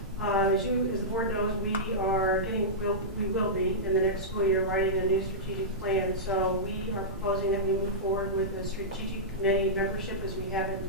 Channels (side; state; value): both; normal; correlation -0.13